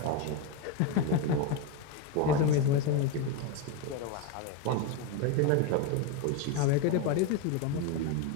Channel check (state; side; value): different; both; correlation 0.03